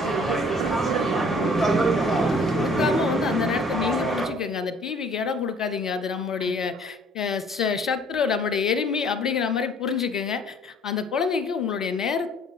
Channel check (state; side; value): normal; both; correlation 0.55